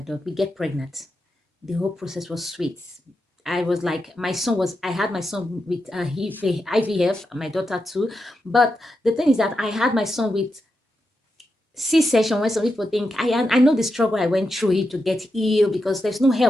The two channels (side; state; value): both; normal; correlation 0.87